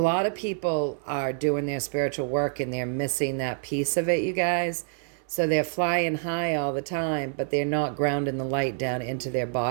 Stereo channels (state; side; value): silent; left; 58 dB below the other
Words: of people are doing their spiritual work and they're missing that piece of it, you guys. So they're flying high all the time, but they're not grounding the light down into their